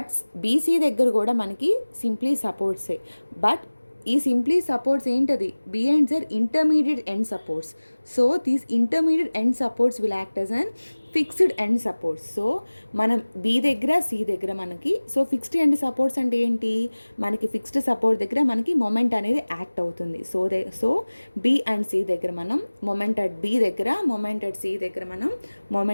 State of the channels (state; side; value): inverted; both; correlation -1.00